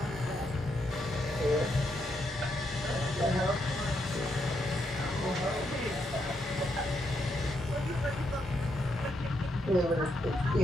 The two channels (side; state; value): both; normal; correlation 0.79